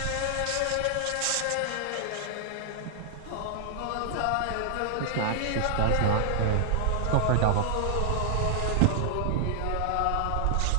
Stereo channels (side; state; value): both; different; correlation 0.00